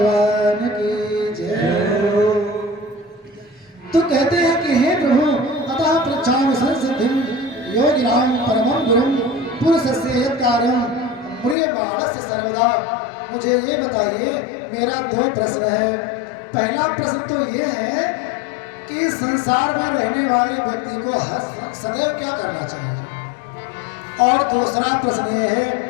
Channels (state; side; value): drops out; right; at 11.6 s